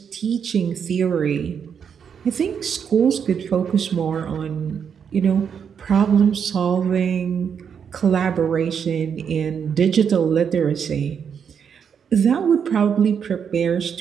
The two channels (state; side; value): quieter; left; 7.3 dB